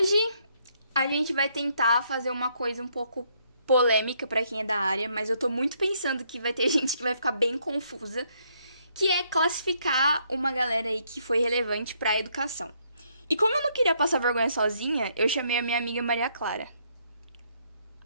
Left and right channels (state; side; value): inverted; both; correlation -0.71